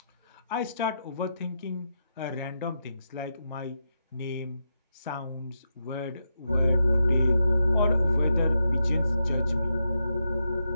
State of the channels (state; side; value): inverted; both; correlation -0.84